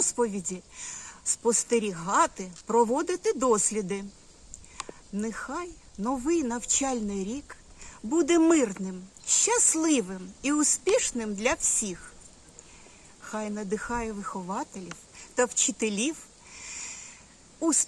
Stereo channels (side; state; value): both; identical; correlation 1.00